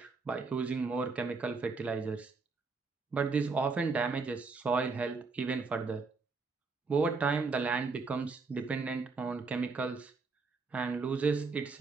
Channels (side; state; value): left; quieter; 4.3 dB